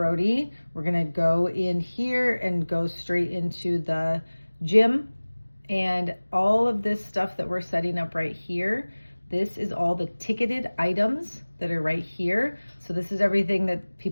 we're gonna go in here and go straight into the gym, and all of this stuff that we're setting up right here, this is all the ticketed items that are right here. So this is everything that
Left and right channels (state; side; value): inverted; both; correlation -1.00